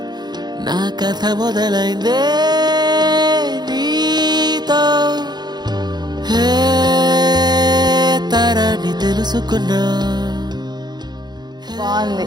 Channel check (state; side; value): late; left; 0.20 ms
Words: నా కథ మొదలైందే నీతో, తరాన్ని తెలుసుకున్నా. బాగుంది.